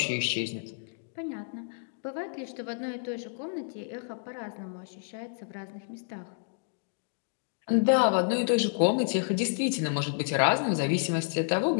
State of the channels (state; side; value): silent; right; digital silence